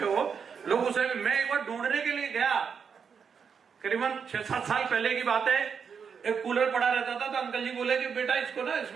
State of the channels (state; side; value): quieter; left; 6.5 dB